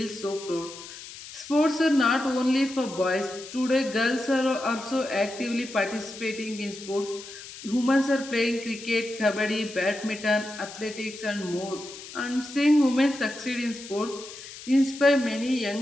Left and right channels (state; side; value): noise; left; hiss, 14 dB below the sound